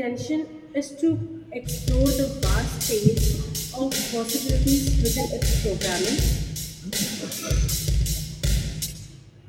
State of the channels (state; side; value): identical; both; correlation 1.00